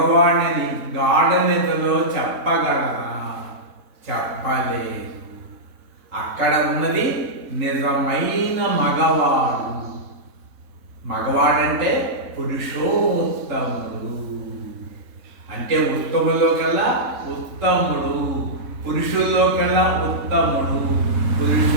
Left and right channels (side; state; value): left; late; 3.8 ms